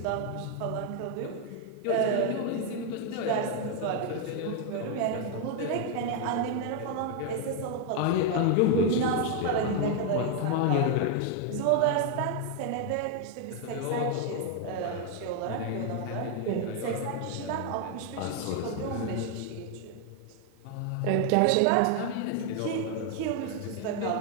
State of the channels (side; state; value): both; different; correlation 0.00